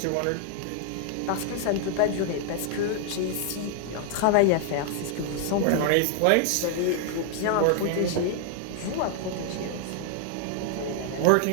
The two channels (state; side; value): different; both; correlation 0.00